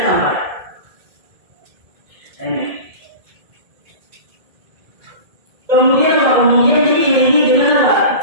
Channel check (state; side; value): late; left; 1.7 ms